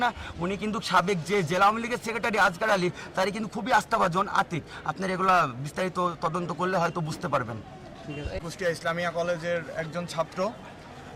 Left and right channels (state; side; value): identical; both; correlation 1.00